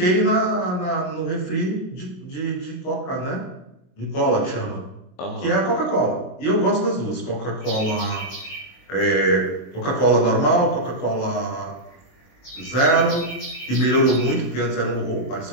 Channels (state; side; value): late; right; 22 ms